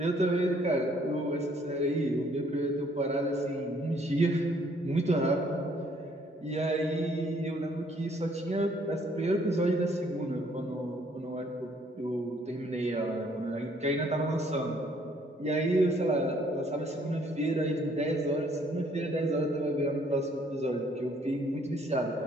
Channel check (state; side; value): normal; both; correlation 0.64